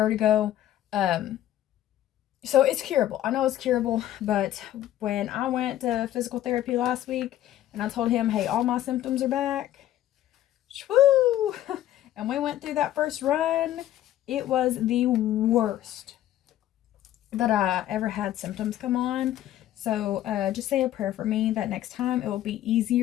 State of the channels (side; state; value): right; quieter; 12.9 dB